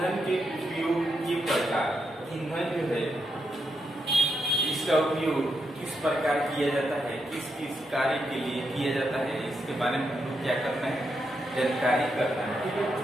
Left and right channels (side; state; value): both; normal; correlation 0.82